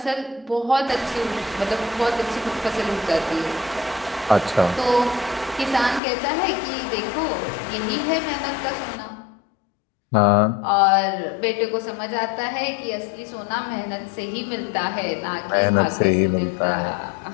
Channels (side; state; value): right; drops out; at 6.0 s